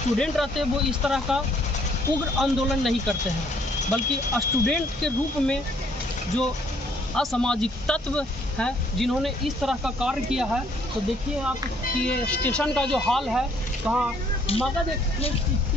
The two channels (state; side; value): normal; both; correlation 0.64